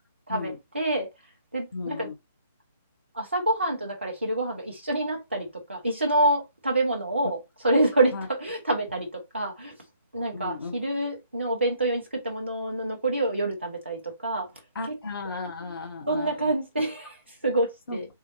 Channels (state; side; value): inverted; both; correlation -0.63